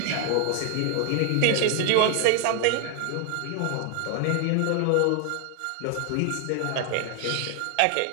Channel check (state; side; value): different; both; correlation 0.00